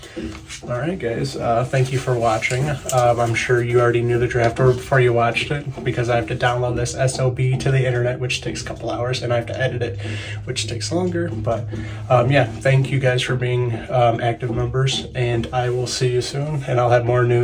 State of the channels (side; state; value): both; identical; correlation 1.00